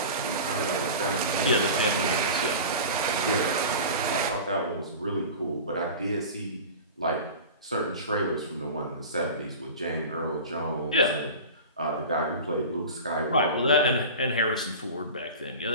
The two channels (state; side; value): inverted; both; correlation -0.33